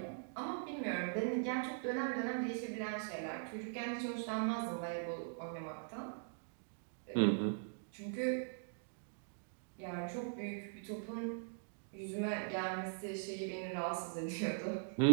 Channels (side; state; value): left; silent; digital silence